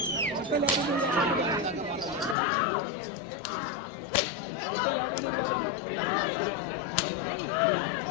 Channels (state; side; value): drops out; right; at 2.4 s